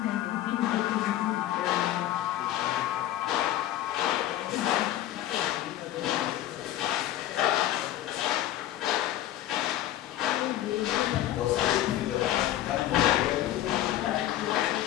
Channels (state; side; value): quieter; right; 13.2 dB